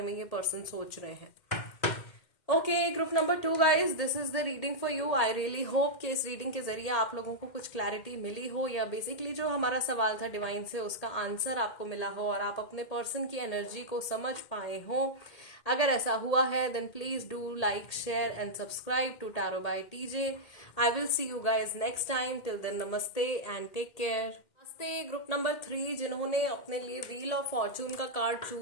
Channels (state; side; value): late; right; 2.1 ms